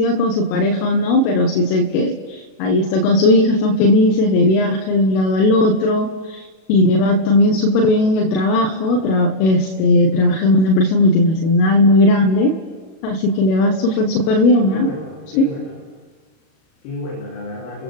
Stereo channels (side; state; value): right; late; 37 ms